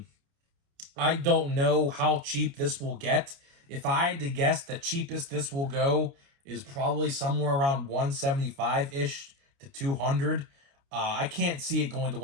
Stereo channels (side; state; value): left; late; 29 ms